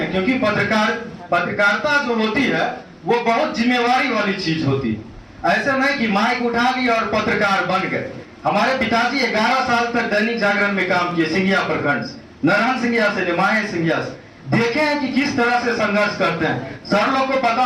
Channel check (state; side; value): identical; both; correlation 1.00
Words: क्योंकि पत्रकारिता जो होती है वो बहुत जिम्मेवारी वाली चीज होती है। ऐसे नहीं कि माइक उठा लिया और पत्रकार बन गए। हमारे पिताजी 11 साल तक दैनिक जागरण में काम किए, सिंघिया प्रखंड से, नारायण सिंघिया से, निमाय सिंघिया से। देखे हैं कि किस तरह से संघर्ष करते हैं। सर लोग को पता